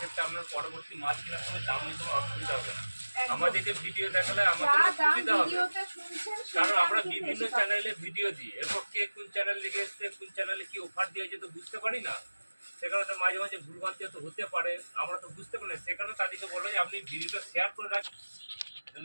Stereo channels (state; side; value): inverted; both; correlation -1.00